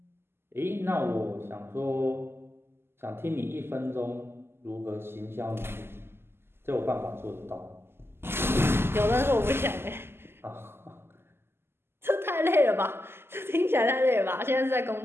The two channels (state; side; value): late; left; 0.12 ms